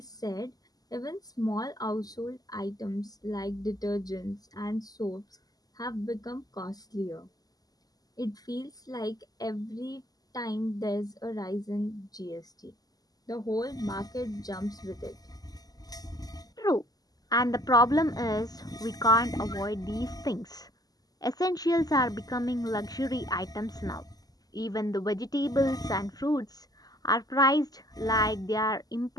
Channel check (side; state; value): right; late; 0.18 ms